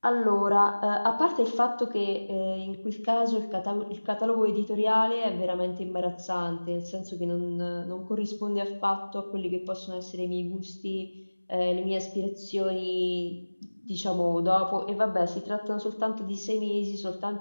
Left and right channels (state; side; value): inverted; both; correlation -1.00